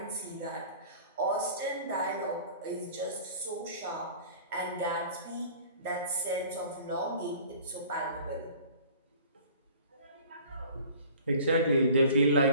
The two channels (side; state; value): both; inverted; correlation -0.47